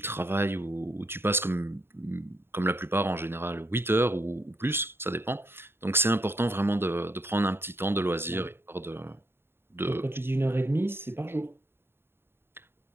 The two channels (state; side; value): late; left; 0.11 ms